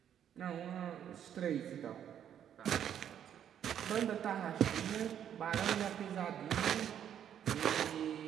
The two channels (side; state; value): left; quieter; 9.5 dB